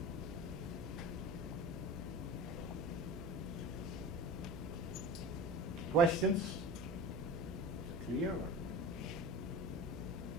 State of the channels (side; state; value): right; noise; hum, 11 dB below the sound